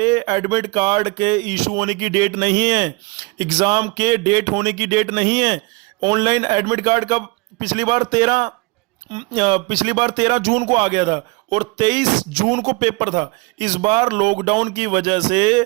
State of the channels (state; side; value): quieter; left; 26.6 dB